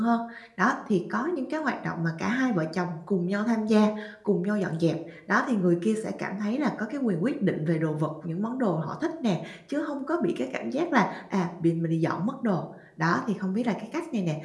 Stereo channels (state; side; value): identical; both; correlation 1.00